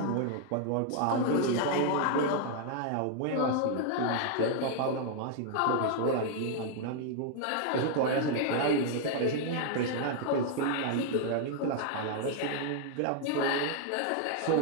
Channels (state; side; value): different; both; correlation 0.00